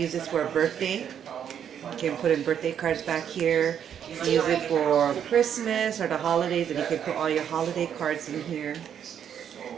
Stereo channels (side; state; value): left; quieter; 8.8 dB